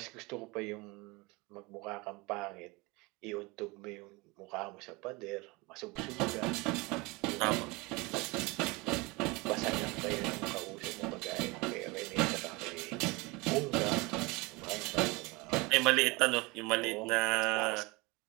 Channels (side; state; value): left; quieter; 25.0 dB